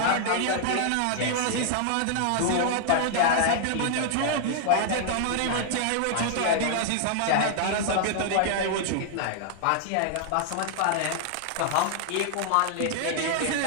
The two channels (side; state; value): both; different; correlation -0.01